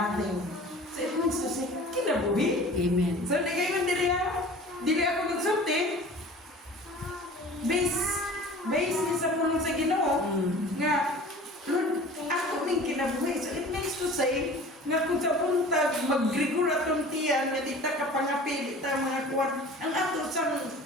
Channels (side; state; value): both; normal; correlation 0.42